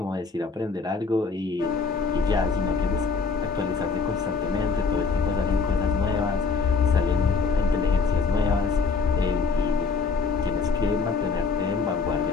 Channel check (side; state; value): right; quieter; 4.7 dB